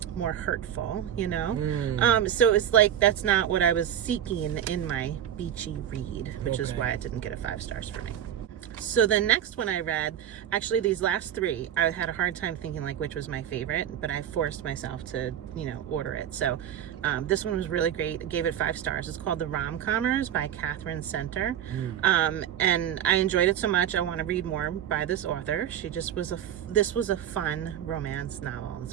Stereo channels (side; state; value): left; quieter; 10.2 dB